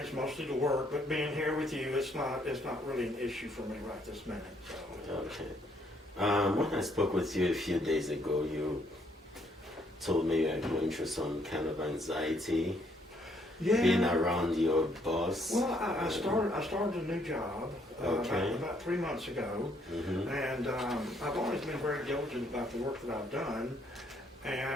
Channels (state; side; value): normal; both; correlation 0.69